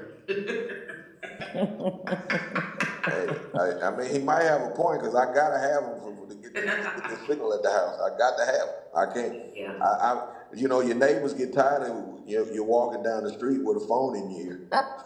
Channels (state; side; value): identical; both; correlation 1.00